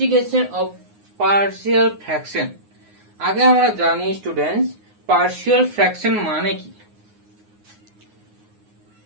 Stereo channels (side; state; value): left; late; 9.6 ms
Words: অফ পার্শিয়াল ফ্র্যাকশন। আগে আমরা জানি স্টুডেন্টস পার্শিয়াল ফ্র্যাকশন মানে কি।